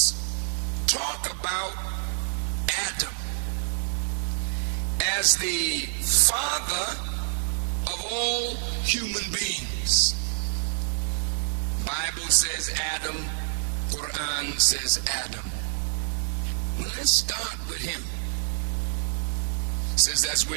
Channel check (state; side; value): silent; left; 60 dB below the other